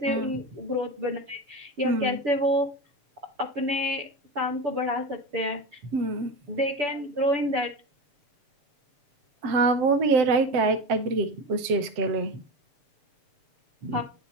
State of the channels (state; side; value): late; left; 7.7 ms